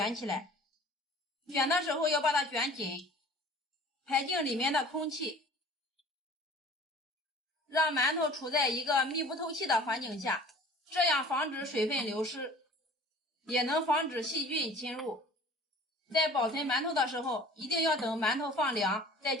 起来，卷的时候要把它卷紧，排净里面的空气，让馒头处在一个密不透气的环境下，这样防止水分流失，也能防止细菌侵入。在保存馒头的时候，一定要等馒头放凉再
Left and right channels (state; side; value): normal; both; correlation 0.47